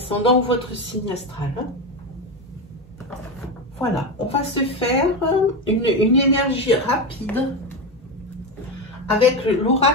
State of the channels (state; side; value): normal; both; correlation 0.16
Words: ou votre signe astral. Hein. Voilà, on va se faire une énergie rapide avec